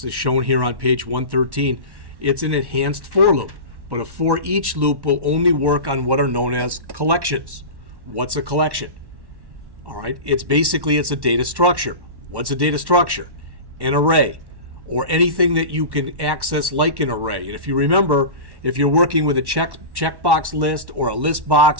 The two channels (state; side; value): late; left; 1.1 ms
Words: is shown here on page 113. It's an enhanced for loop, but a for each loop will only work on what are known as collections. What's a collection? All right, it's a data structure. What's a data structure? An array, or anything that you can access like an array. And if you remember, if you're working with a checkbox list or a list